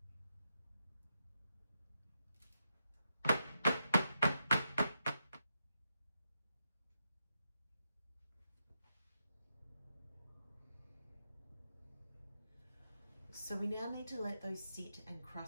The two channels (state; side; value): inverted; both; correlation -0.85